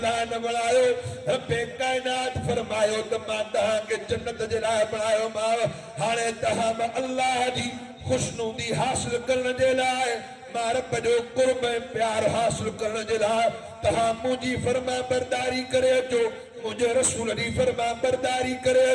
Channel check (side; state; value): both; identical; correlation 1.00